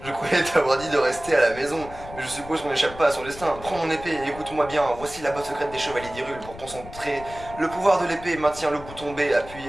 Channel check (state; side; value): noise; left; rumble, 15 dB below the sound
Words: Je croyais t'avoir dit de rester à la maison, mais je suppose qu'on n'échappe pas à son destin. Prends mon épée et écoute-moi bien. Voici la botte secrète des chevaliers d'Hyrule pour concentrer le pouvoir de l'épée. Maintiens le bouton B